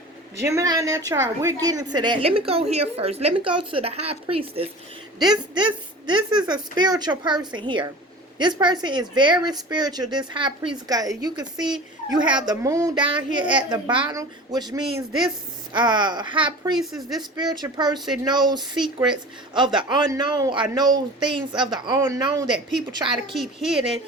we're getting to that. Let me go here first. Let me go to the High Priestess. This is a spiritual person here. This person is very spiritual. This High Priest guy, you can see you have the moon down here at the bottom, which means this High Priestess, this spiritual person knows secrets of the unknown or knows things of the unknown that people try to keep hidden,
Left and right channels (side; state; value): both; normal; correlation 0.38